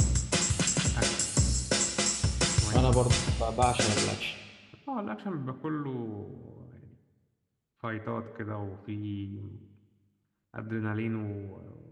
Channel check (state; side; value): identical; both; correlation 1.00